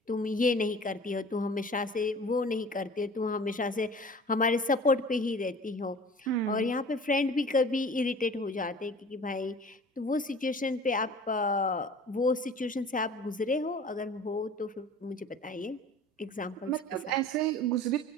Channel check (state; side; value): normal; both; correlation 0.44